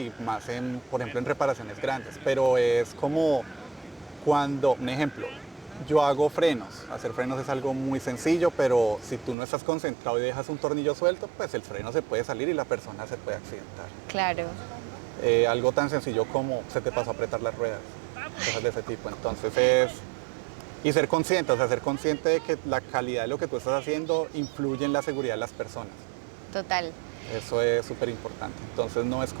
más por ejemplo, en reparaciones grandes, pero es como cuando, un ejemplo, yo hago frenos. Hacer frenos es algo muy sencillo, pero si tú no estás concentrado y dejas un tornillo suelto, pues el freno se puede salir y la persona se puede accidentar. Claro. Algo tan sencillo como se te pasó a apretar las ruedas, cosas de ese tipo. Entonces y ser consciente, o sea, ser consciente de que la calidad de lo que tú estás haciendo influye en la seguridad de las personas. Total. Eso es súper importante. Entonces no es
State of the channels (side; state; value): left; drops out; at 9.3 s